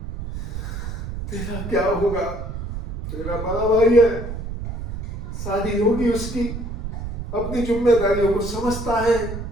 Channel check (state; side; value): noise; right; rumble, 7 dB below the sound